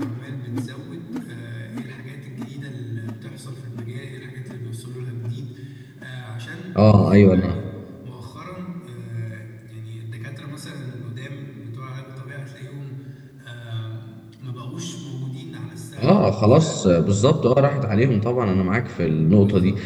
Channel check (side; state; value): both; identical; correlation 1.00